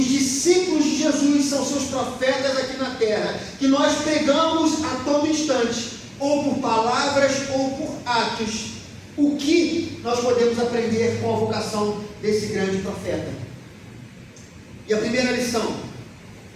discípulos de Jesus são seus profetas aqui na terra, que nós pregamos a todo instante, ou por palavras ou por atos, o que nós podemos aprender com a vocação desse grande profeta? E a primeira lição,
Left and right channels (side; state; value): both; identical; correlation 1.00